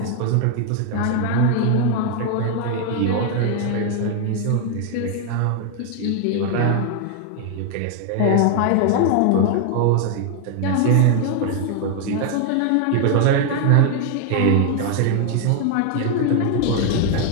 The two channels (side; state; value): both; different; correlation 0.00